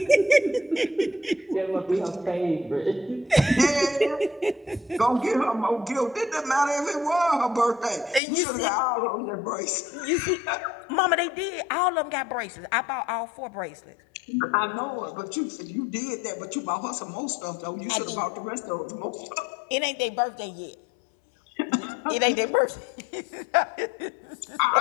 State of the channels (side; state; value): right; drops out; at 8.2 s